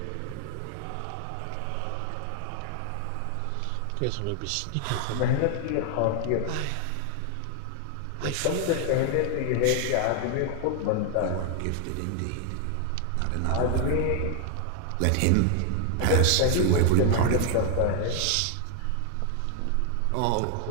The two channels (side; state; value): both; different; correlation 0.00